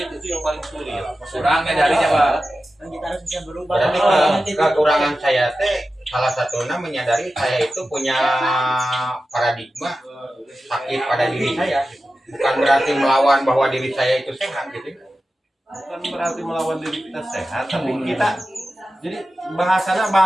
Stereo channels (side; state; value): both; normal; correlation 0.93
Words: itu yang paling sulit. Kurangnya darinya Pak. Dan kita harus bisa berubah. Berarti kekurangan saya teh salah satunya menyadari saya itu punya paradigma sakit pada diri saya. Bukan berarti melawan bahwa diri saya itu sehat gitu. Bukan berarti melawan diri kita sehat, tapi kita jadi